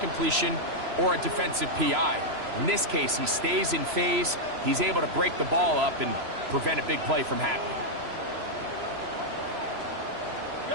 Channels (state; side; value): late; left; 3.0 ms